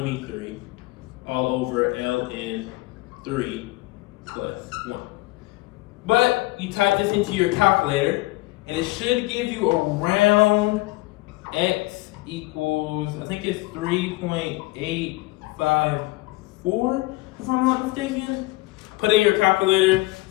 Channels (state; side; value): quieter; right; 21.1 dB